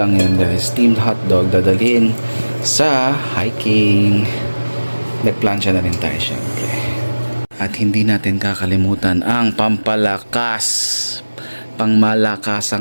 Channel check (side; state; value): both; inverted; correlation -1.00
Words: yun guys. Steamed hotdog dadalhin sa hiking. Nagplansya na rin tayo syempre. At hindi natin kakalimutan ang pampalakas,